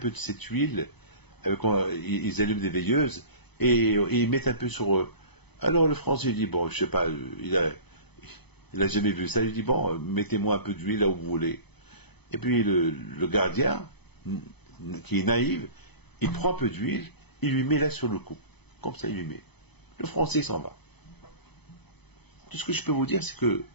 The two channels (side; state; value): right; late; 0.99 ms